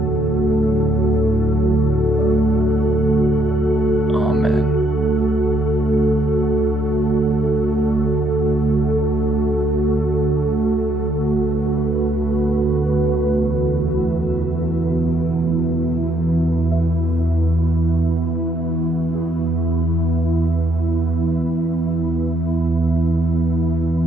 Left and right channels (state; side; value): normal; both; correlation 0.71